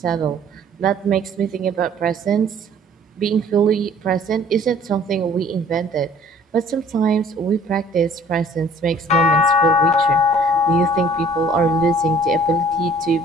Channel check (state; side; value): normal; both; correlation 0.55